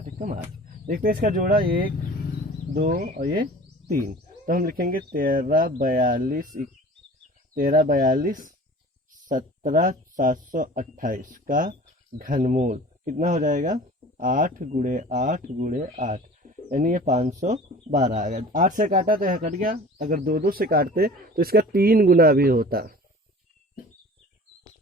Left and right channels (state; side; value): normal; both; correlation 0.43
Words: एकम 8। देखते हैं इसका जोड़ा 1 2 और ये 3, तो हम लिखेंगे 13 42 17 728 का घनमूल कितना हो जाएगा 8 गुणे 8 गुणे 8, यानी ये 512 आ गया। 8 से काटा तो यहाँ कट गया, अगर दो दो से काटते तो इसका 3 गुना भी होता।